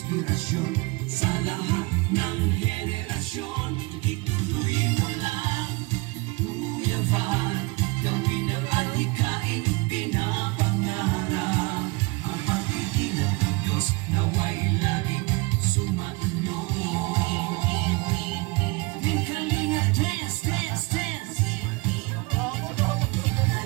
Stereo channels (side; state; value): left; quieter; 25.8 dB